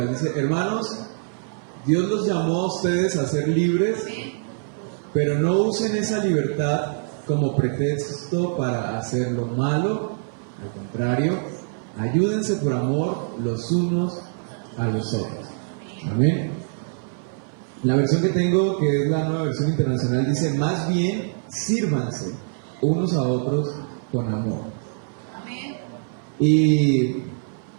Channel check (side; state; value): left; silent; 58 dB below the other